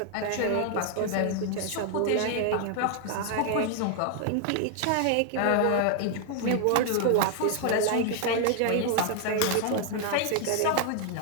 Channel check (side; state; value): both; different; correlation 0.00